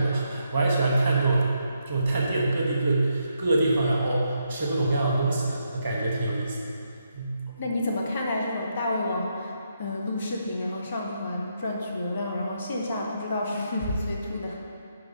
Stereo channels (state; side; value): inverted; both; correlation -0.79